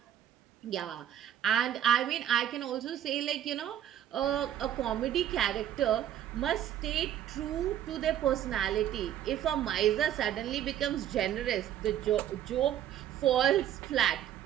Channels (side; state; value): left; quieter; 10.9 dB